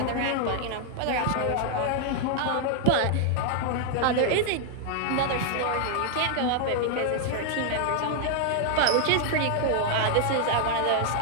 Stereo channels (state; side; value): different; both; correlation 0.00